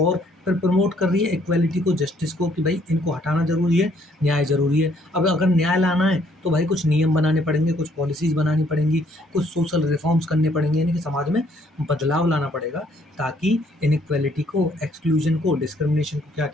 फिर प्रमोट कर रही है इक्वालिटी को, जस्टिस को, कि भाई इनको हटाना ज़रूरी है, न्याय ज़रूरी है। अब अगर न्याय लाना है तो भाई कुछ नियम बनाने पड़ेंगे, कुछ पॉलिसीज़ बनानी पड़ेंगी, कुछ सोशल रिफॉर्म्स करने पड़ेंगे, यानी कि समाज में बदलाव लाना पड़ेगा, ताकि इनइक्वालिटी को, एक्सक्लूजन को, डिस्क्रिमिनेशन को क्या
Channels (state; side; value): normal; both; correlation 0.66